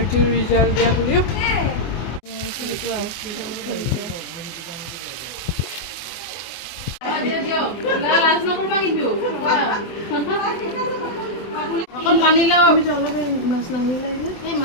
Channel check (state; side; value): late; right; 24 ms